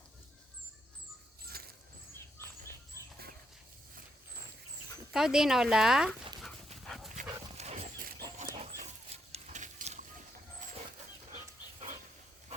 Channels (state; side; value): normal; both; correlation 0.78